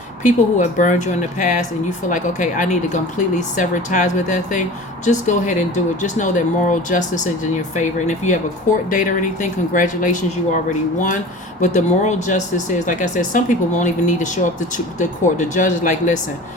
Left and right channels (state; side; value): normal; both; correlation 0.38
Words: people who have burned you in the past and you feel like, okay, I need to completely sever ties with that thing, just go ahead and do it. Just know that moral justice is in your favor. And if you have a court date or anything, congratulations, you already won. But the moral justice is, like I said, some people won't even need to show up to the court. The judge is like, listen,